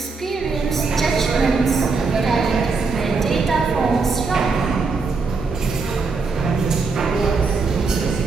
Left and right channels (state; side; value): quieter; left; 4.4 dB